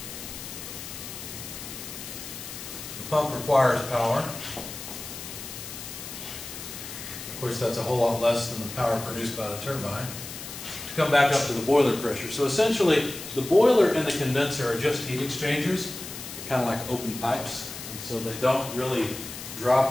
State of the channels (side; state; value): left; noise; hiss, 10 dB below the sound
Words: The pump requires power. Of course, that's a whole lot less than the power produced by the turbine to come back up to the boiler pressure. So essentially, the boiler and the condenser are just heat exchangers. They're kind of like open pipes. So they don't really